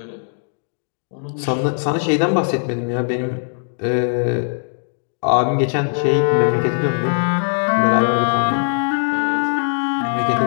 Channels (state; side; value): silent; right; digital silence